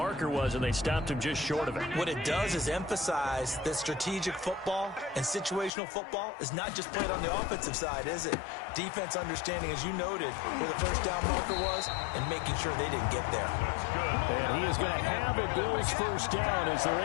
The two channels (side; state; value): right; drops out; at 5.7 s